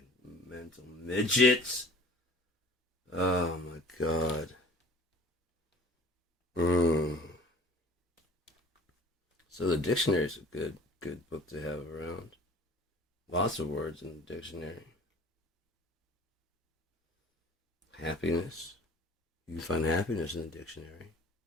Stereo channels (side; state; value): both; normal; correlation 0.46